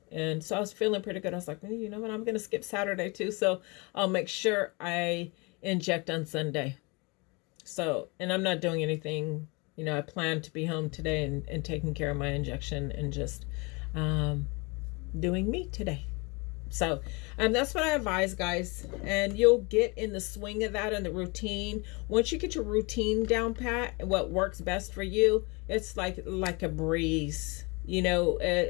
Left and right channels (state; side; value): quieter; right; 28.4 dB